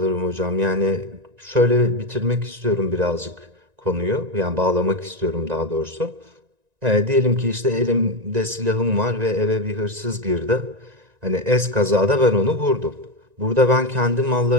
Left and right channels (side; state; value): left; late; 1.9 ms